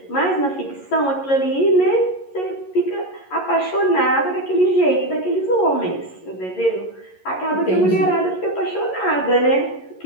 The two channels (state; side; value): late; right; 11 ms